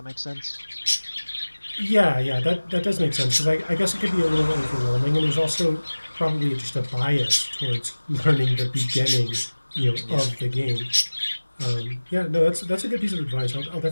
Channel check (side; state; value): both; inverted; correlation -1.00